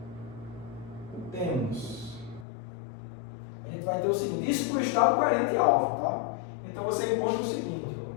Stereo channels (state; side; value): drops out; right; at 2.5 s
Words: temos, a gente vai ter o seguinte, isso para o estado coerente alfa, tá? Então você encontra o seguinte, ó,